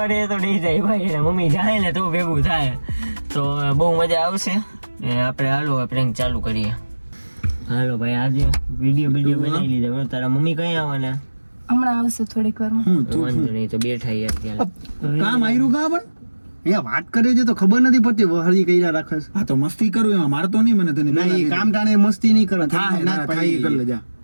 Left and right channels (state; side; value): inverted; both; correlation -1.00